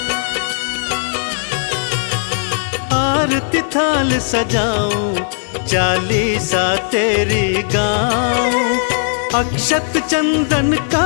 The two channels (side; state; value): right; silent; digital silence